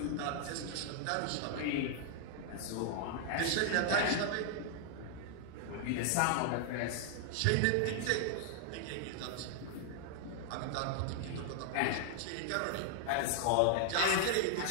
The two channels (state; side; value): different; both; correlation -0.01